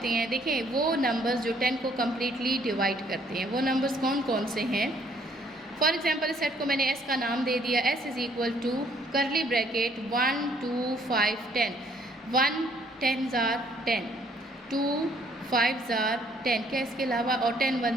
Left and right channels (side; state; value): both; normal; correlation 0.64